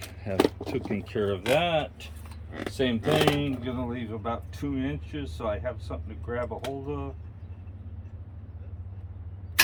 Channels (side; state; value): both; identical; correlation 1.00